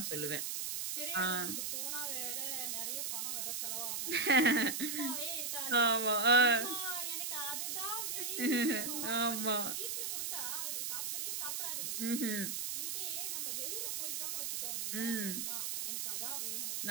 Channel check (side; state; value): right; noise; hiss, 1 dB below the sound